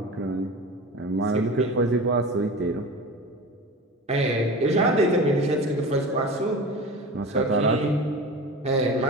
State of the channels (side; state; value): both; normal; correlation 0.32